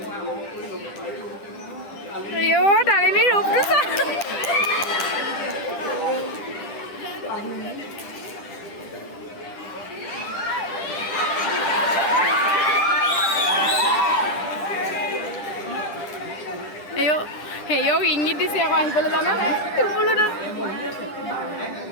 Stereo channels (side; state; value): right; late; 10 ms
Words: ডালিমীৰ ৰূপটো চা হেয়ক ইংগিত দিছে আকৌ আহিবলৈ জানো বোলো